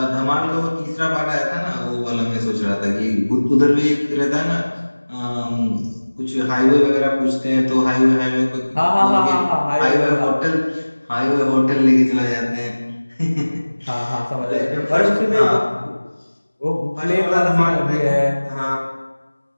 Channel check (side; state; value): both; inverted; correlation -1.00